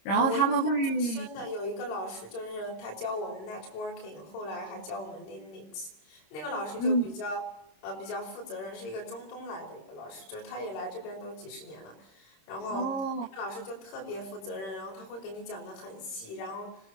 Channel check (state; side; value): late; right; 26 ms